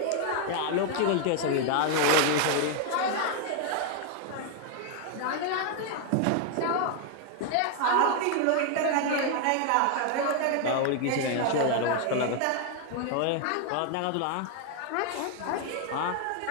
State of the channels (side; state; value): both; different; correlation 0.00